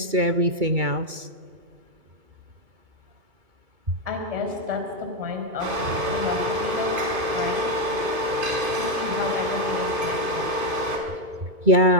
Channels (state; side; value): late; left; 2.5 ms